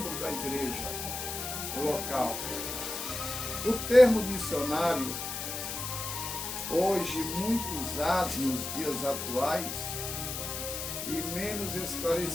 da igreja local. O termo missionário, hoje muito usado nos dias atuais e menos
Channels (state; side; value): noise; left; hiss, 5 dB below the sound